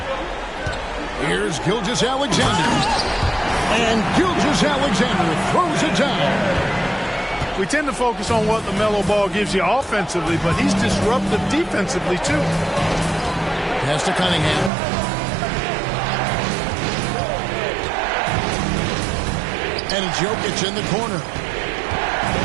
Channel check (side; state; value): left; drops out; at 14.7 s